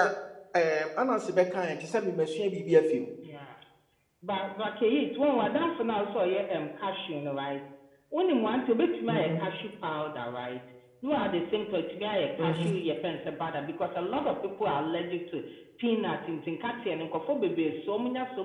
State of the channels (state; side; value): identical; both; correlation 1.00